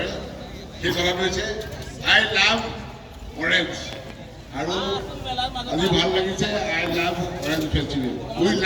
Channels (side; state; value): both; identical; correlation 1.00